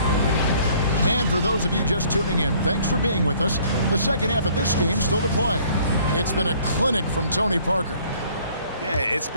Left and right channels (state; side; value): inverted; both; correlation -0.58